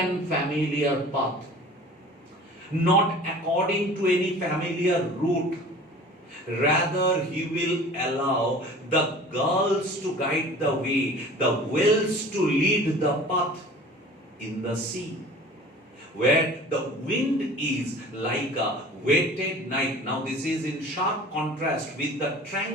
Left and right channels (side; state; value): both; normal; correlation 0.43